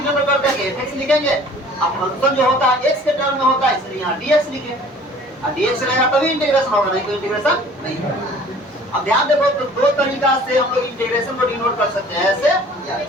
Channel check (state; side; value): normal; both; correlation 0.50